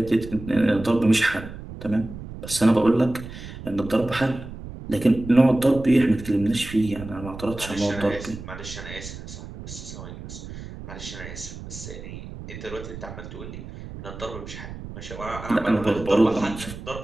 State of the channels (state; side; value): noise; right; rumble, 12 dB below the sound